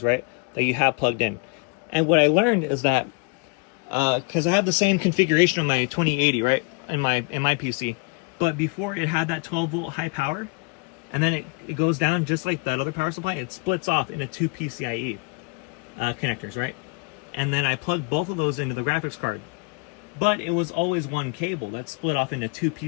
right? That you have plugged in. And what I learned is that because I have the same configuration on my 2080, right, in my PC, but before it had that 12-volt high power, and then it goes down just like that other power supply. It splits off into two PCIe connectors, right? And then I plugged both of those into the graphics card, but it was always one cable that split off into two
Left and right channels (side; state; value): right; quieter; 31.1 dB